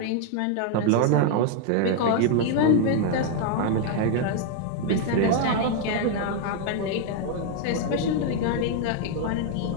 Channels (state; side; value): different; both; correlation 0.00